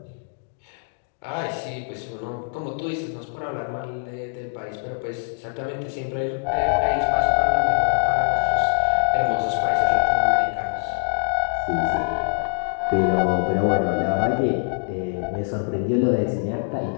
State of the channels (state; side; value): silent; right; digital silence